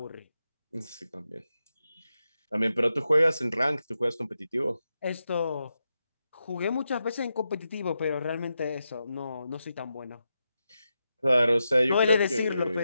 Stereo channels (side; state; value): both; inverted; correlation -0.88